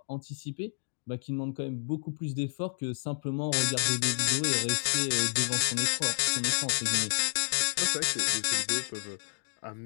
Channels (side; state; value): right; silent; digital silence